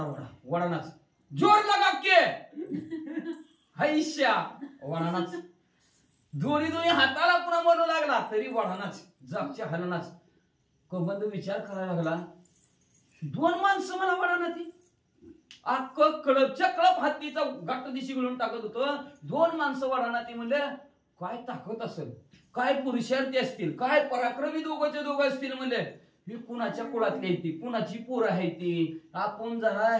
वडा वडानाच जोर लगा के हैश्या वडानाच दोन्ही हाताला पुन्हा म्हणू लागला तरी वडानाच जागच्या हलनाच. कबंद विचार करायला लागला 2 माणसं मला वडाना ती अख्ख कळपच्या कळप हत्तीचा गाठ दिशी गळून टाकत होतं. 2 माणसं वडाना ती म्हणले काय ताकद असेल काय पुरुषार्थी असतील काय पराक्रमी दोघं असतील म्हणले. ही कुणाच्या कुळातली आहे ती कुणाची पोर आहे ती आपण जरा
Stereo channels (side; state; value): both; identical; correlation 1.00